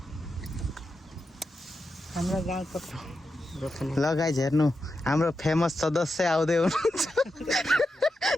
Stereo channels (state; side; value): normal; both; correlation 0.88